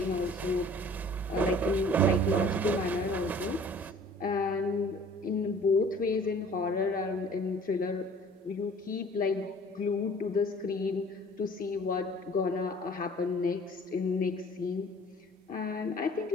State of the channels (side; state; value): both; normal; correlation 0.50